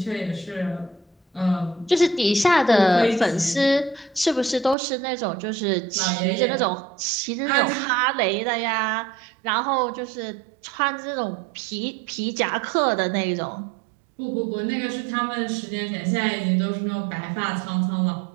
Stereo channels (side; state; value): left; drops out; at 4.8 s